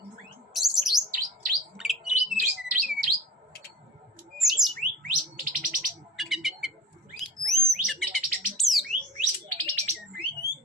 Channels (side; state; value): both; normal; correlation 0.37